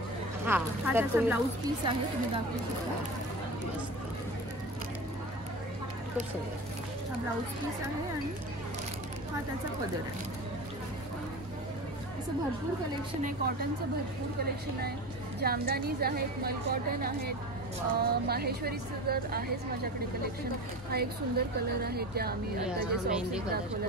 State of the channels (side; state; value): both; normal; correlation 0.31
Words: हा त्याचा ब्लाऊज पीस आहे, तुम्ही दाखवू शकता. खूप सुंदर हा ब्लाऊज पीस आहे आणि हा त्याचा पदर आहे. असं भरपूर कलेक्शन आहे. कॉटनचं भरपूर कलेक्शन आहे. जामदानीज आहेत, मल कॉटन आहेत, माहेश्वरीचं जर आहेच माझ्याकडे कलेक्शन. हा एक सुंदर कलर आहे त्या आम्ही आता जे सॉफ्ट